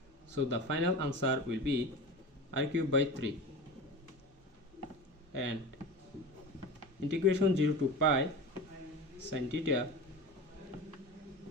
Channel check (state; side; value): normal; both; correlation 0.30